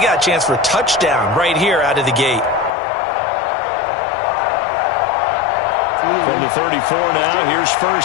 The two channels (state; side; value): drops out; right; at 2.7 s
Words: a chance for a touchdown right here out of the gate. From the 34 now, here's